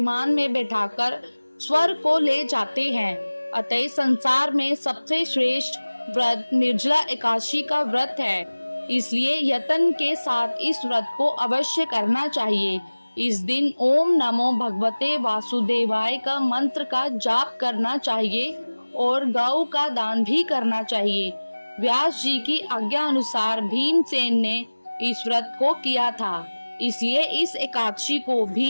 में बैठाकर स्वर्ग को ले जाते हैं। अतः संसार में सबसे श्रेष्ठ व्रत निर्जला एकादशी का व्रत है, इसलिए यत्न के साथ इस व्रत को अवश्य करना चाहिए। इस दिन ओम नमो भगवते वासुदेवाय का मंत्र का जाप करना चाहिए और गौ का दान भी करना चाहिए। व्यास जी की आज्ञा अनुसार भीमसेन ने इस व्रत को किया था, इसलिए इस एकादशी को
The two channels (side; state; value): both; inverted; correlation -1.00